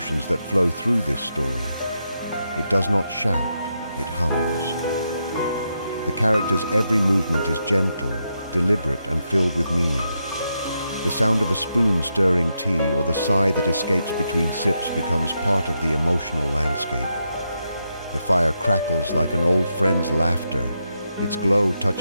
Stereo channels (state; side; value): inverted; both; correlation -0.83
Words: that flow through this story. It does not shout, it hums. The character's every movement is gentle, deliberate, and filled with meaning. The sound of a spoon stirring tea or the sigh that escapes between sips becomes part of the emotional landscape. The fire crackles like an old friend's laughter, its glow